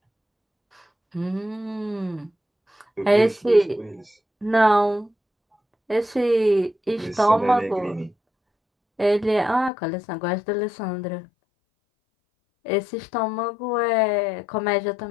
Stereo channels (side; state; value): right; drops out; at 9.7 s